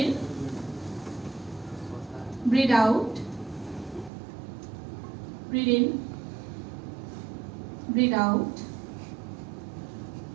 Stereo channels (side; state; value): left; drops out; at 4.1 s